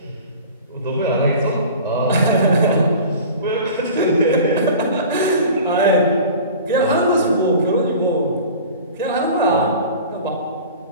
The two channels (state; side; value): inverted; both; correlation -0.40